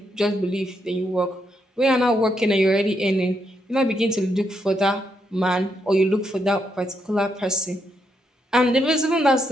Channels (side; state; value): both; normal; correlation 0.79